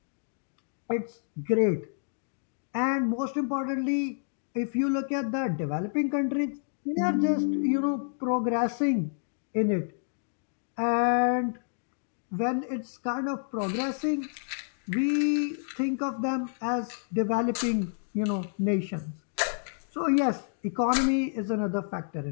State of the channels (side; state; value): right; silent; digital silence